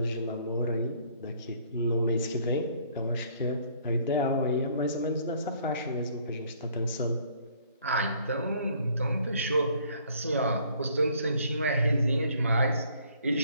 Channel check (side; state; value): both; inverted; correlation -0.61